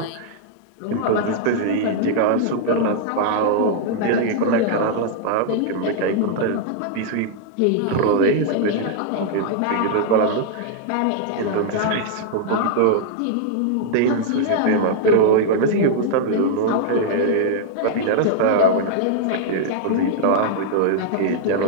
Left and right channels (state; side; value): different; both; correlation -0.01